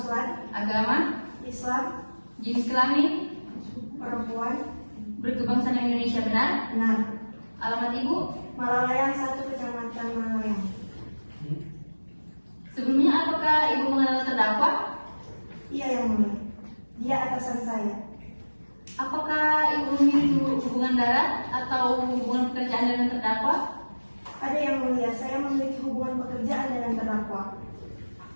agama, Islam, jenis kelamin, perempuan, berkebangsaan Indonesia benar, benar. alamat ibu, Malalayang 1, Kecamatan Malalayang. sebelumnya apakah ibu mengenal terdakwa? Iya, yang mulia. Dia atasan saya. Apakah ibu memiliki hubungan darat atau hubungan pekerjaan dengan terdakwa? Ada yang mulia, saya memiliki hubungan pekerjaan dengan terdakwa.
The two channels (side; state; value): both; inverted; correlation -1.00